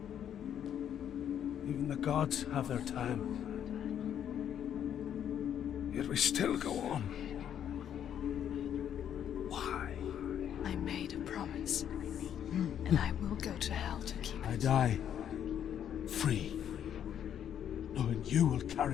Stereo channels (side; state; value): right; quieter; 9.5 dB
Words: Even the gods have their time. Yet we still go on. Why? I made a promise, and I will go to hell to keep it. I die free, knowing you will